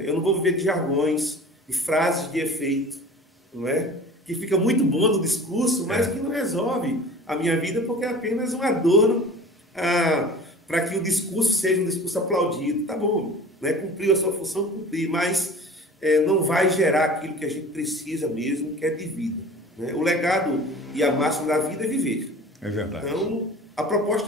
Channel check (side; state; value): both; normal; correlation 0.41